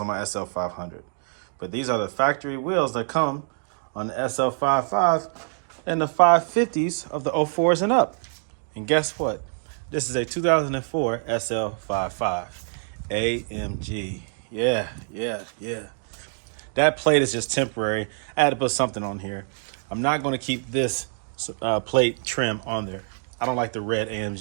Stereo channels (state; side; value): silent; left; 61 dB below the other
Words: my SL500. But these are the factory wheels that come on the SL55 and the 550s of the 04s and up. And guess what? This is a 2004 SL55 AMG. Yeah. That plate is just temporary. I had to put something on here. I'm not going to keep this plate trim on there. I don't like the red